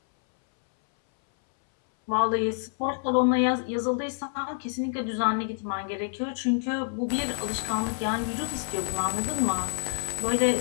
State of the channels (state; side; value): silent; right; 60 dB below the other